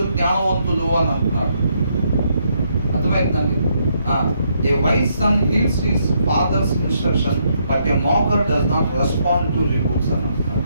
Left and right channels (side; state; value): both; inverted; correlation -0.75